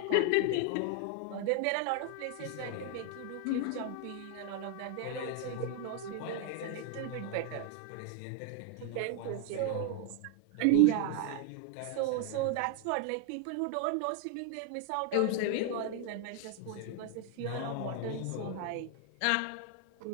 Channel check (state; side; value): different; both; correlation 0.00